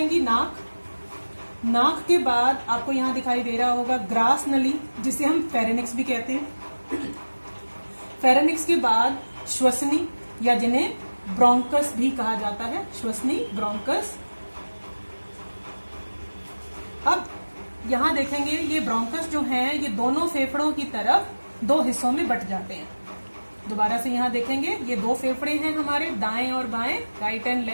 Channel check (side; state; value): both; inverted; correlation -1.00